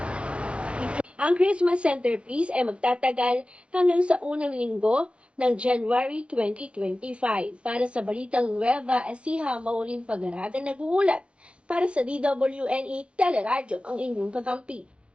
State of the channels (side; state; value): left; late; 0.059 ms